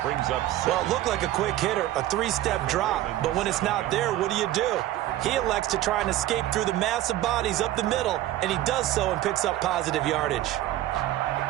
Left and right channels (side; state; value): left; quieter; 14.5 dB